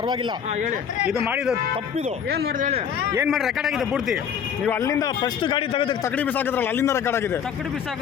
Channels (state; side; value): quieter; right; 7.9 dB